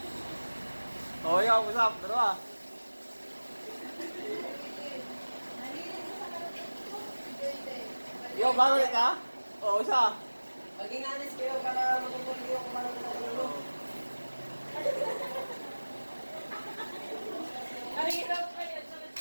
Oh, ikaw, usap. Dalawa. Yo, bago ulit ka? Oo, isa. Maging honest kayo para matutuloy kayo kung paano natutulog.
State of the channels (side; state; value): both; inverted; correlation -1.00